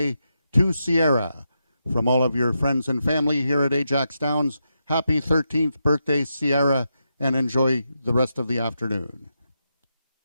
to Sierra. From all of your friends and family here at Ajax Downs, happy 13th birthday, Sierra, and enjoy the rest of the afternoon.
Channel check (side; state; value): both; inverted; correlation -0.85